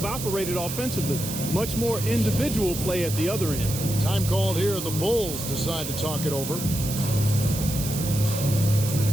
operated offensively. Much more individual play at the other end. Time called here. The Bulls decide to talk it over.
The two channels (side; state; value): right; noise; hiss, 7 dB below the sound